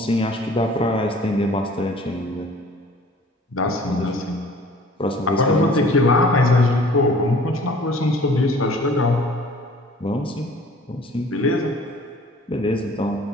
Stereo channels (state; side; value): normal; both; correlation 0.50